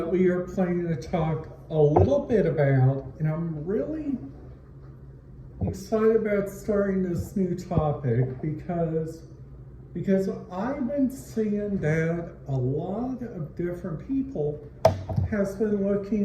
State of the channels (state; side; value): identical; both; correlation 1.00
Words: we are planning to talk a little bit about, and I'm really excited about starting this new topic because I've been seeing that a lot of different people has been